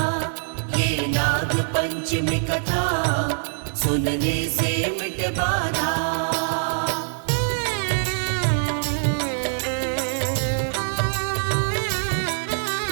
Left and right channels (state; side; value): silent; left; 63 dB below the other